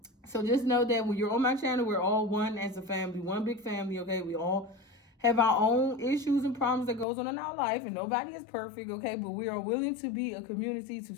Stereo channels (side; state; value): right; drops out; at 7.1 s